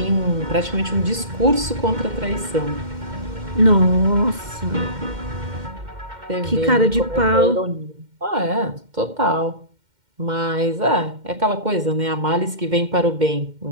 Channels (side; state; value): left; late; 2.1 ms